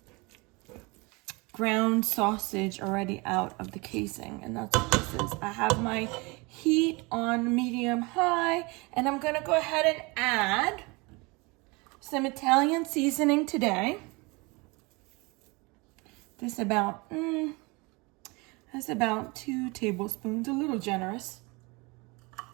ground sausage already out of the casing, and that's what this is. I have my heat on medium high, and I'm gonna go ahead and add some Italian seasoning today. That's about 2 tablespoons, a little generous.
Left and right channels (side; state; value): left; quieter; 26.7 dB